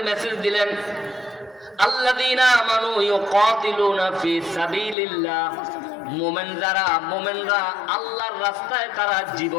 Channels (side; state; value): right; drops out; at 5.0 s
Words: মেসেজ দিলেন, আল্লাযীনা আমানু ইউকাতিলুনা ফি সাবিলিল্লাহ মোমেনরা আল্লাহর রাস্তায় তারা